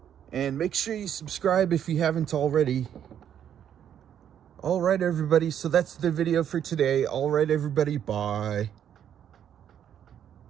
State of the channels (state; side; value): quieter; left; 9.5 dB